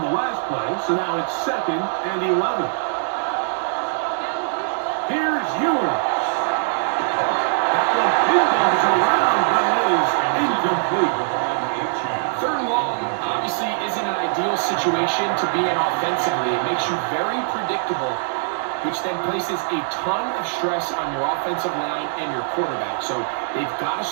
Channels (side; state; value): left; silent; digital silence